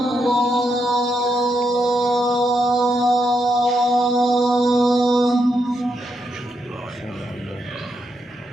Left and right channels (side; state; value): both; normal; correlation 0.81